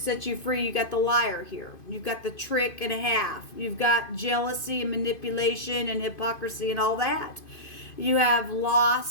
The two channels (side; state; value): right; late; 2.5 ms